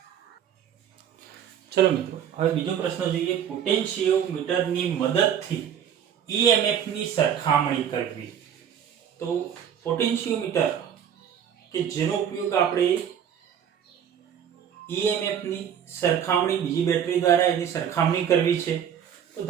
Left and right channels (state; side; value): quieter; left; 8.8 dB